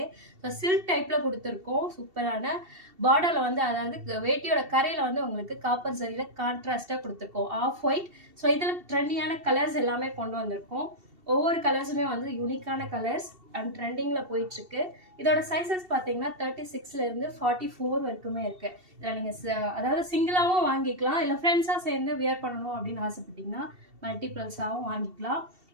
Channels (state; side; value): late; left; 2.7 ms